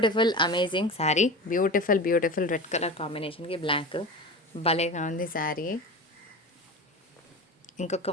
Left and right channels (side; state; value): both; normal; correlation 0.30